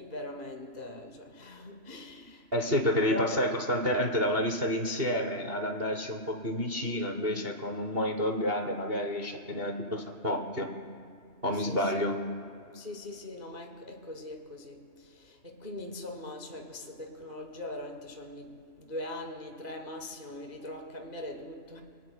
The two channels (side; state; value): left; late; 3.0 ms